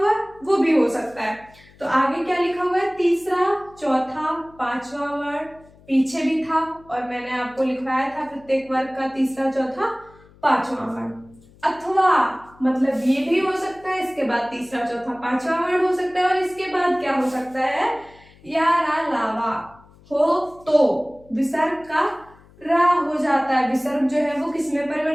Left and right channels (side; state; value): left; noise; hum, 26 dB below the sound